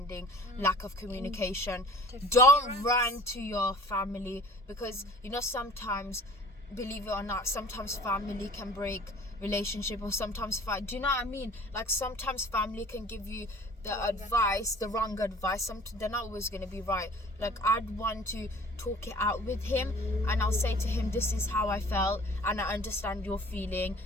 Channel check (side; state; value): both; normal; correlation 0.47